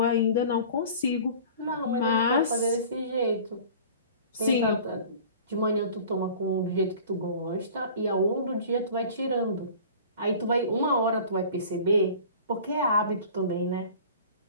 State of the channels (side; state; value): both; inverted; correlation -0.43